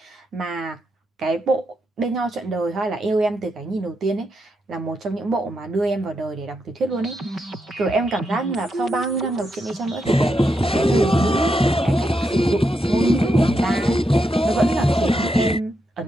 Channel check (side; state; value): both; normal; correlation 0.83